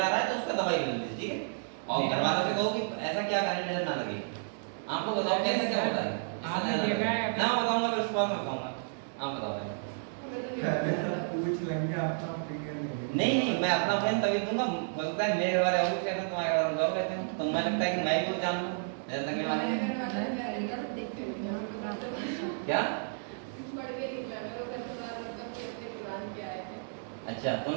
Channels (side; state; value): left; silent; digital silence